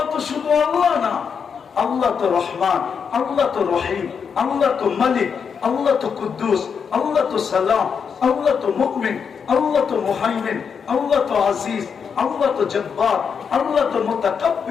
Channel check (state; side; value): quieter; right; 6.5 dB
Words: তো শুধু আল্লাহ না, আল্লাহ তো রহমান, আল্লাহ তো রহিম, আল্লাহ তো মালিক, আল্লাহ তো কুদ্দুস, আল্লাহ তো সালাম, আল্লাহ তো মুমিন, আল্লাহ তো মুহাইমিন, আল্লাহ তো আজিজ, আল্লাহ তো জব্বার, আল্লাহ তো